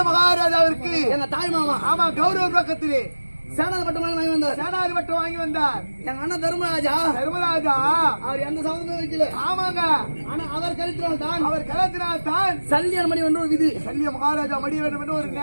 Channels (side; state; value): both; inverted; correlation -1.00